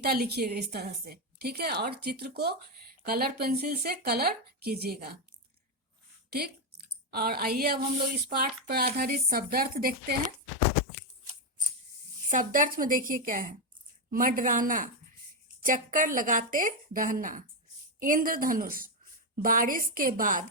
लिखिएगा इस तरह से, ठीक है। और चित्र को कलर पेंसिल से कलर कीजिएगा, ठीक। और आइए अब हम लोग इस पाठ पर आधारित शब्दार्थ देखते हैं। शब्दार्थ में देखिए क्या है। मंडराना, चक्कर लगाते रहना। इंद्रधनुष, बारिश के बाद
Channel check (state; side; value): normal; both; correlation 0.06